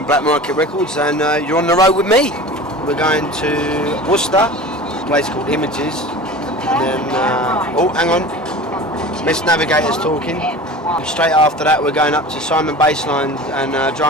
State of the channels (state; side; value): normal; both; correlation 0.36